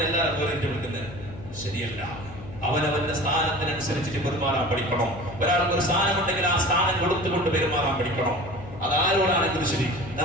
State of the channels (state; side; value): noise; left; hum, 15 dB below the sound